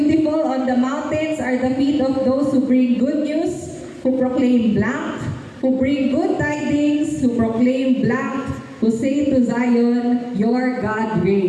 on the mountains are the feet of those who bring good news, who proclaim blank, who bring good tidings, who proclaim blank, who say to Zion, your God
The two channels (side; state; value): both; identical; correlation 1.00